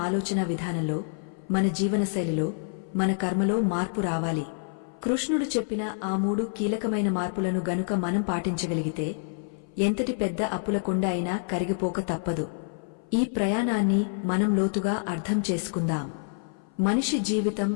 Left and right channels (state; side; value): silent; right; 57 dB below the other